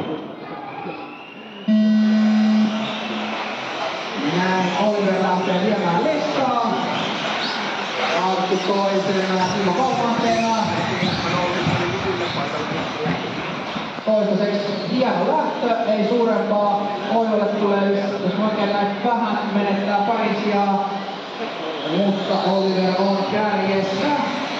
Näin Oliver lähtee viemään listaa. Arttu toisena, Timo kolmantena. Toistaiseksi hieno lähtö, ei suurempaa. Oivalle tulee, jos oikein näin vähän, menettää pari sijaa. Mutta Oliver on kärjessä.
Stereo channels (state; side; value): identical; both; correlation 1.00